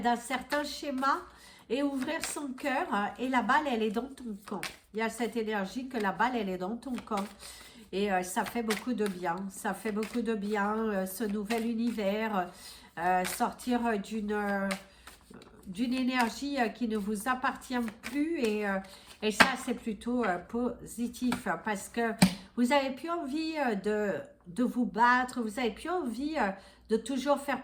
certain schéma et ouvrir son cœur et la balle elle est dans ton camp. Il y a cette énergie que la balle elle est dans ton camp et ça fait beaucoup de bien, ça fait beaucoup de bien ce nouvel univers, sortir d'une énergie qui ne vous appartient plus et ça c'est plutôt positif parce que vous n'avez plus envie de vous battre, vous n'avez plus envie de toujours faire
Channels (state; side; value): identical; both; correlation 1.00